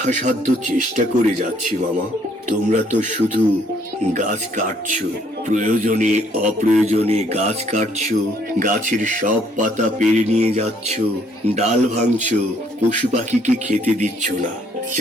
চেষ্টা করে যাচ্ছি মামা। তোমরা তো শুধু গাছ কাটছো, প্রয়োজনে অপ্রয়োজনে গাছ কাটছো, গাছের সব পাতা পেরে নিয়ে যাচ্ছ, ডাল ভাঙছো, পশু পাখিকে খেতে দিচ্ছ না।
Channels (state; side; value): normal; both; correlation 0.65